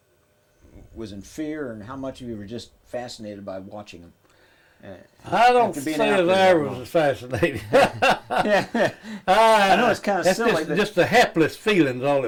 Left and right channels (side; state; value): both; identical; correlation 1.00